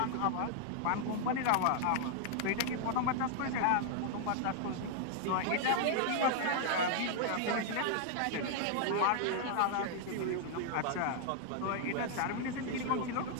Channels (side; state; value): both; different; correlation 0.00